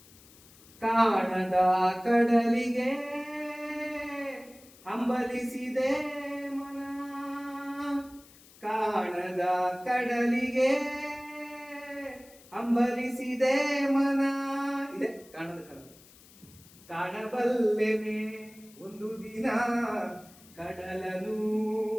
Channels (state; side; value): noise; left; hiss, 24 dB below the sound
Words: ಕಾಣದ ಕಡಲಿಗೆ ಹಂಬಲಿಸಿದೆ ಮನ, ಕಾಣದ ಕಡಲಿಗೆ ಹಂಬಲಿಸಿದೆ ಮನ. ಇದೆ ಕಾಣದ ಕಡಲು. ಕಾಣಬಲ್ಲೆನೆ ಒಂದು ದಿನ ಕಡಲನು,